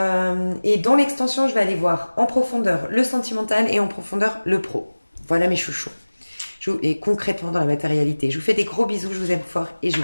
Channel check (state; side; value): inverted; both; correlation -1.00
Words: dans l'extension, je vais aller voir en profondeur le sentimental et en profondeur le pro. Voilà mes chouchous. Et concrètement dans la matérialité. Je vous fais des gros bisous, je vous aime fort et je